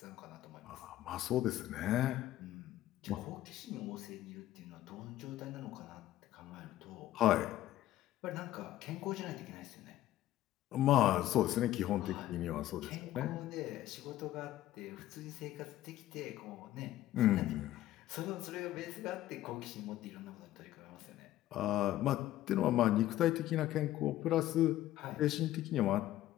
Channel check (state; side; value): quieter; right; 14.2 dB